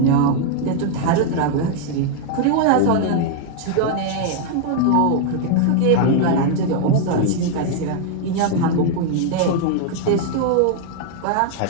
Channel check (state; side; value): different; both; correlation 0.00